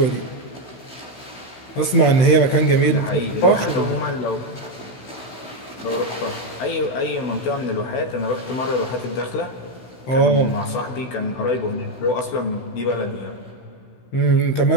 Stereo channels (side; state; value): right; late; 16 ms